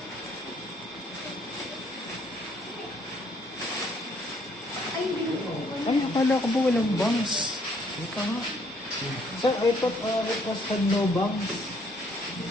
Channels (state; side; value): normal; both; correlation 0.66